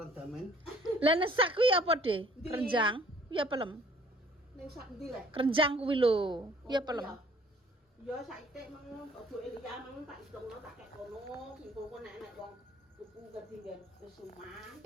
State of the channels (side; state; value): both; normal; correlation 0.57